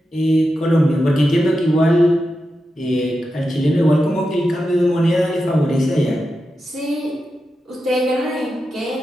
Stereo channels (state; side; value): normal; both; correlation 0.89